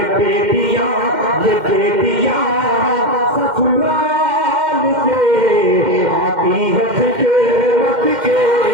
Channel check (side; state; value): left; late; 2.1 ms